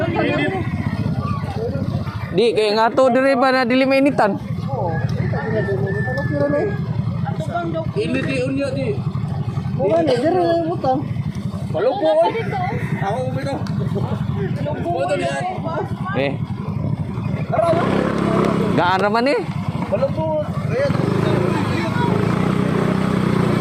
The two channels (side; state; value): both; identical; correlation 1.00